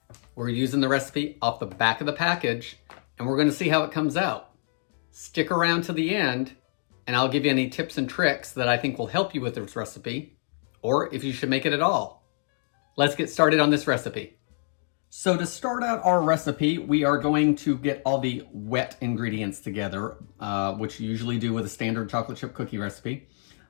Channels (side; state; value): right; silent; digital silence